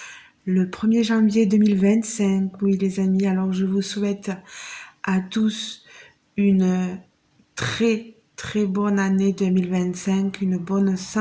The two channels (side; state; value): both; identical; correlation 1.00